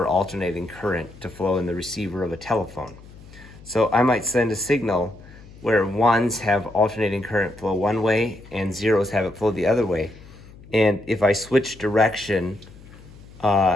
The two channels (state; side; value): noise; left; hum, 21 dB below the sound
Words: alternating current to flow in the receiver of a telephone. So I might send a signal where 1s have alternating current flow one way and 0s have it flow the other way. And if I switch direction